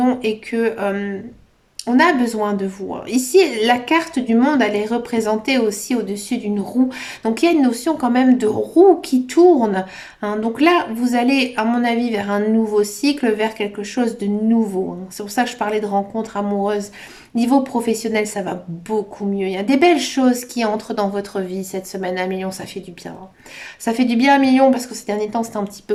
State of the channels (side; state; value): both; identical; correlation 1.00